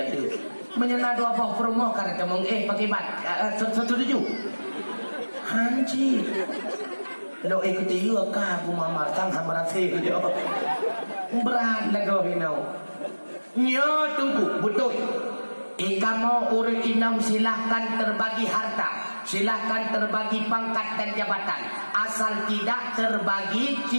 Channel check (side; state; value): both; inverted; correlation -1.00